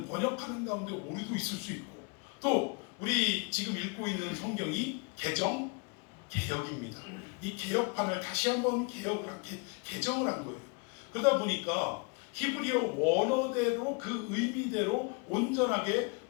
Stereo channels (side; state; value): right; quieter; 31.7 dB